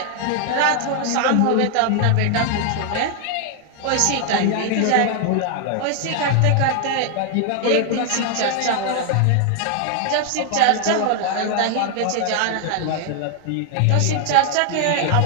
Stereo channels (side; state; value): both; different; correlation 0.00